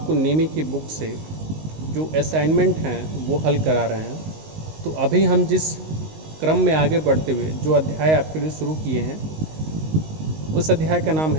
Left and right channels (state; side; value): late; left; 19 ms